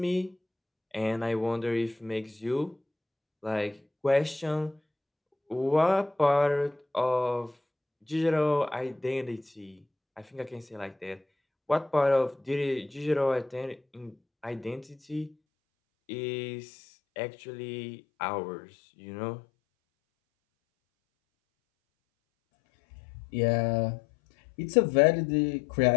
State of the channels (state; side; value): drops out; right; at 15.4 s